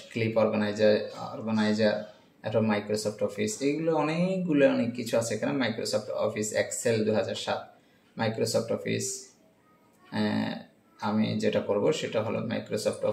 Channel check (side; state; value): both; identical; correlation 1.00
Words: ক্লিপ অর্গানাইজার, এটা মাইক্রোসফট অফিস। এইগুলো অনেক কিছু আছে এখানে। Microsoft Office Excel 2007, Microsoft Office. আমি যেটা করব সেটা হলো মাইক্রোসফট